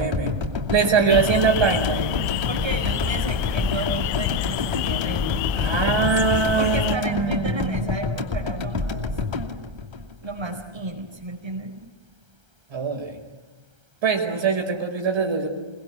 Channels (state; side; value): late; left; 1.3 ms